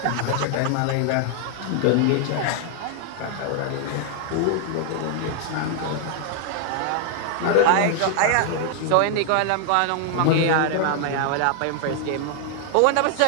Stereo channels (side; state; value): both; different; correlation 0.00